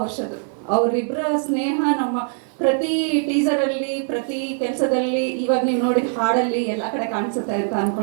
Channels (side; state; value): left; silent; 64 dB below the other